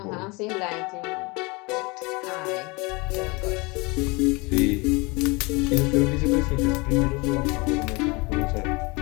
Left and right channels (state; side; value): quieter; right; 26.6 dB